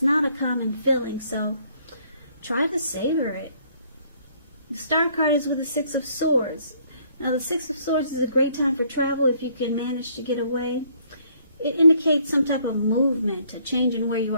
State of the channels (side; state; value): both; inverted; correlation -0.64